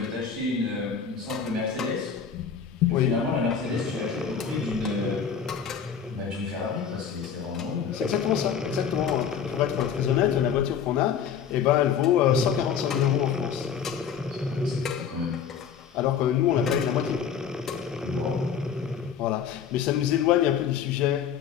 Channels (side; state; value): right; quieter; 7.4 dB